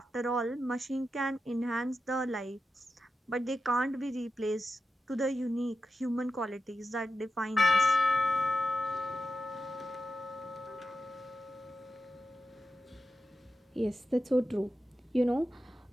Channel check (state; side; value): normal; both; correlation 0.90